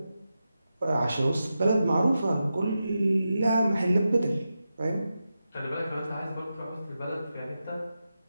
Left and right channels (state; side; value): inverted; both; correlation -0.90